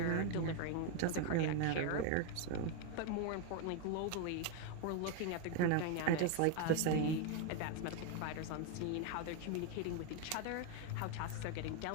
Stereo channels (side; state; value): both; different; correlation 0.01